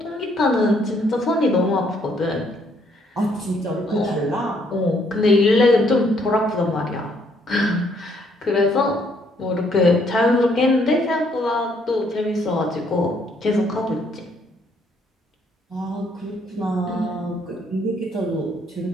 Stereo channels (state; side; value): normal; both; correlation 0.68